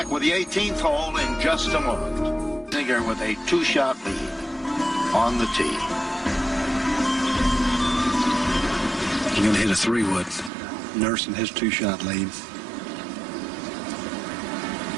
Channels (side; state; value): left; drops out; at 10.5 s